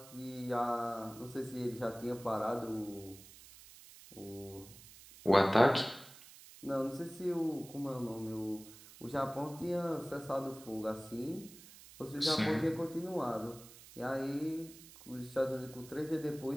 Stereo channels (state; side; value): noise; right; hiss, 19 dB below the sound